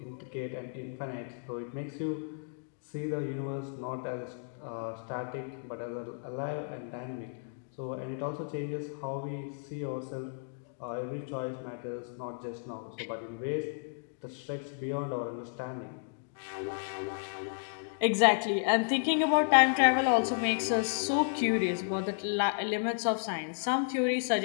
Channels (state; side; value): silent; right; digital silence